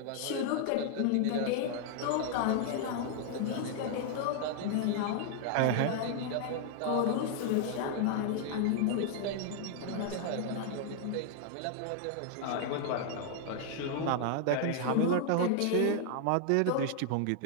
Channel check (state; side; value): different; both; correlation 0.00